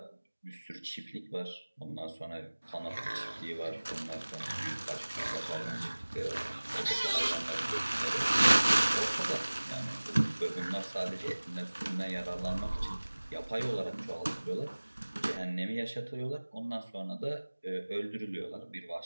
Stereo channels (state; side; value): inverted; both; correlation -1.00